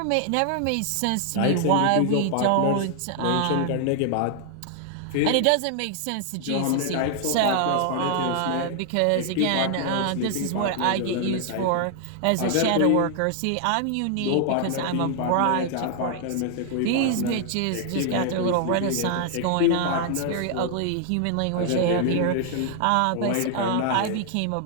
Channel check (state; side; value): different; both; correlation 0.00